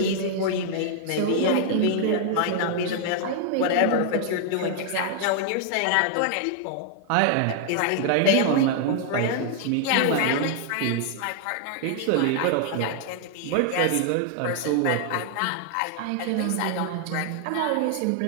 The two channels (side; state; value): both; different; correlation 0.00